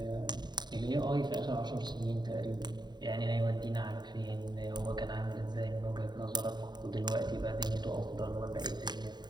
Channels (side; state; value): left; late; 0.21 ms